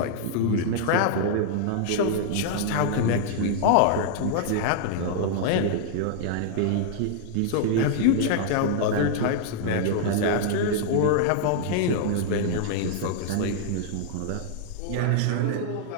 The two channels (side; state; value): both; different; correlation -0.01